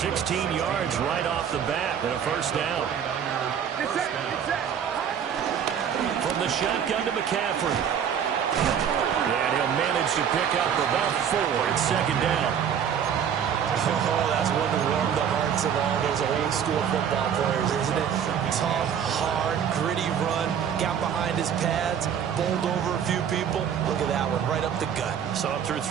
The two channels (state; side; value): quieter; left; 8.3 dB